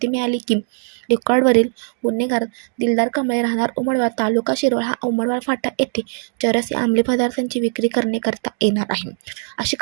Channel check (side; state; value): left; silent; digital silence